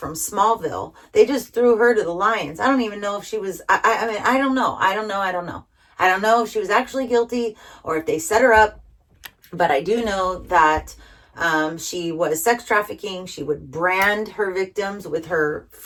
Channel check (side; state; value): both; identical; correlation 1.00